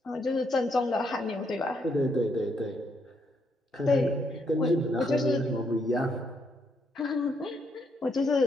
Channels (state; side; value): normal; both; correlation 0.75